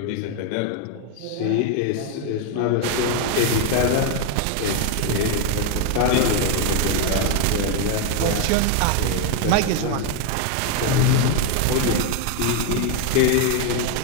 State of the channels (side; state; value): both; different; correlation 0.01